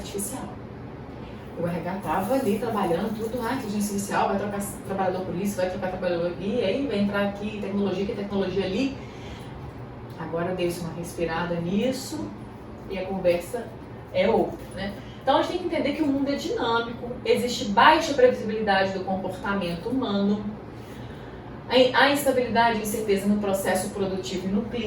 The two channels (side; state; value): both; identical; correlation 1.00